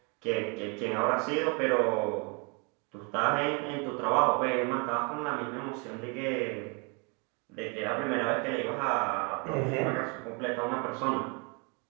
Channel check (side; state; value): left; quieter; 33.3 dB